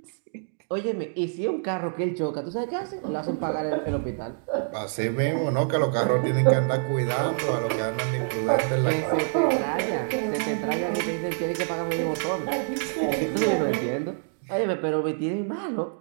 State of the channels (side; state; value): left; silent; digital silence